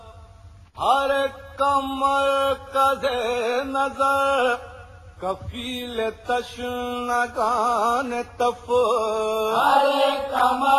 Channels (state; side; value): identical; both; correlation 1.00